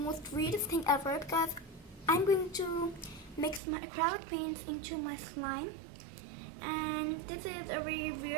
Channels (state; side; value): drops out; left; at 3.6 s